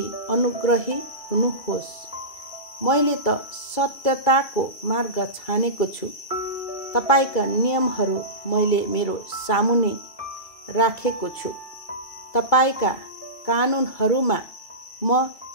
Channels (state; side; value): late; right; 2.3 ms